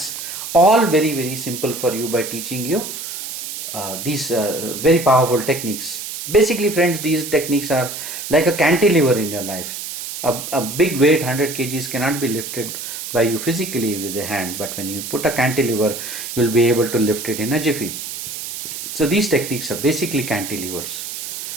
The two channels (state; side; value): noise; right; hiss, 7 dB below the sound